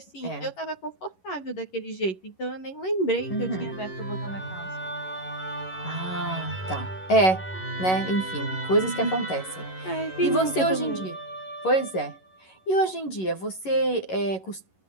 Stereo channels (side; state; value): right; late; 11 ms